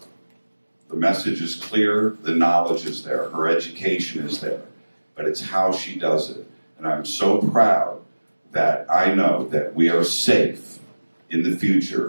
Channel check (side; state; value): both; inverted; correlation -1.00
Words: the message is clear, the knowledge is there, her education is there, but it's how she does it. And I'm so proud that I know that we are safe in the